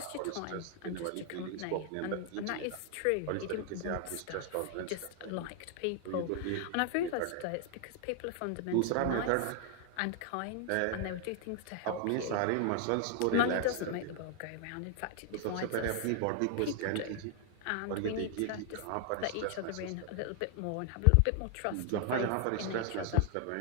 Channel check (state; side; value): different; both; correlation 0.00